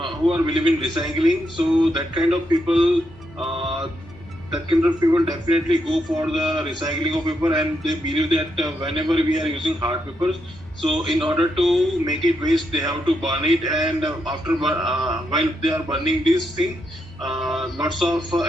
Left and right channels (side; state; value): both; normal; correlation 0.80